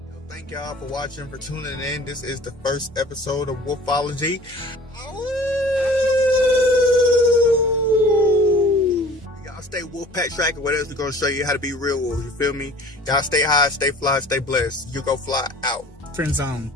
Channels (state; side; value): normal; both; correlation 0.46